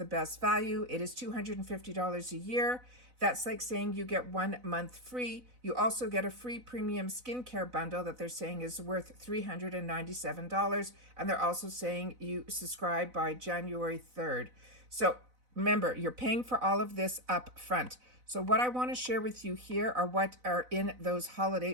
best value. It is $250 a year. That's like saying you get 1 month free. You also get a free premium skincare bundle that they're saying is worth $397. And they're also saying you subscribe by January 3rd. So remember, you're paying for all of this up front. So what I want to share with you here are what are in those holiday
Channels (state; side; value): late; left; 4.0 ms